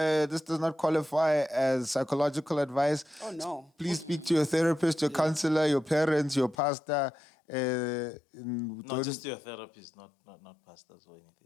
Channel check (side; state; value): right; drops out; at 6.6 s